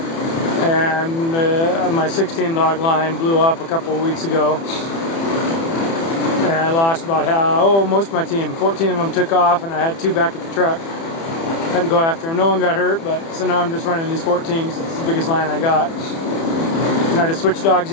and my 16 dog line blew up a couple of weeks ago, and I lost about most of my team. 14 of them took off, and I had 2 back at the truck. Had to go after them. No one got hurt, but so now I'm just running these 14s. It's the biggest line I got. And I just switch dogs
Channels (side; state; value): right; late; 30 ms